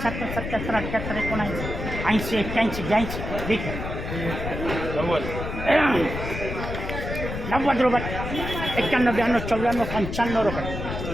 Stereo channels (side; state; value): left; noise; rumble, 6 dB below the sound